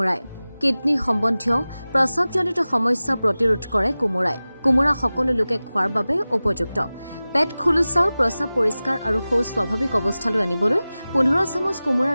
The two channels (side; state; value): both; inverted; correlation -0.97